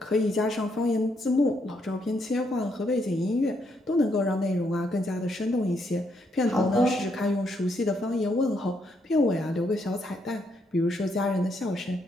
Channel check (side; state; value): both; normal; correlation 0.75